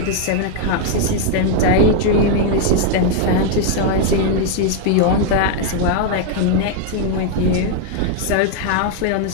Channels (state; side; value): different; both; correlation 0.00